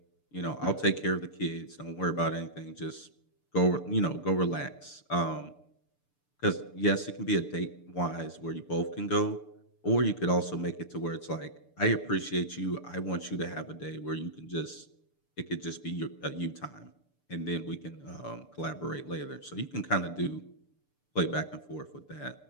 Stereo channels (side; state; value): right; late; 6.8 ms